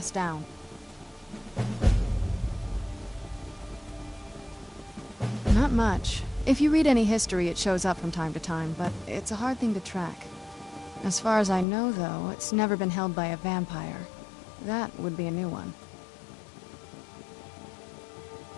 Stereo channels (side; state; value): right; drops out; at 11.7 s